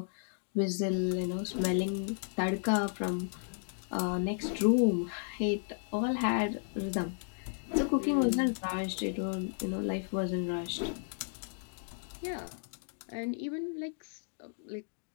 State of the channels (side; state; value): right; silent; digital silence